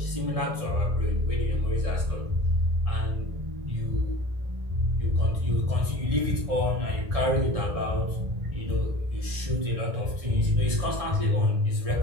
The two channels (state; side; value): late; left; 1.7 ms